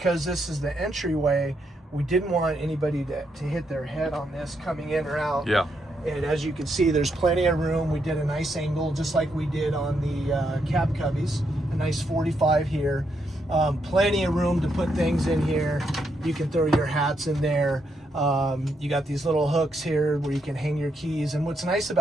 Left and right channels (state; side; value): normal; both; correlation 0.79